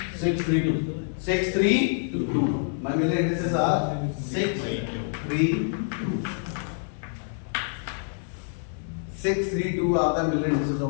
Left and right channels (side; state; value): right; silent; 60 dB below the other